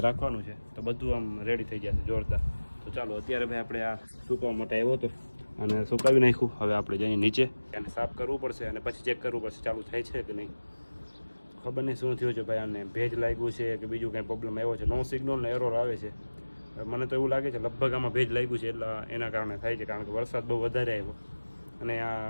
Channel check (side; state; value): both; inverted; correlation -1.00